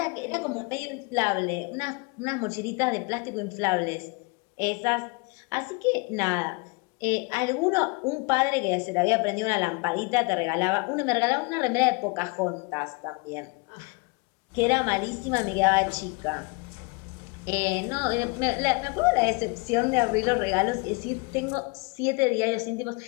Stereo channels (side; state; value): right; quieter; 29.4 dB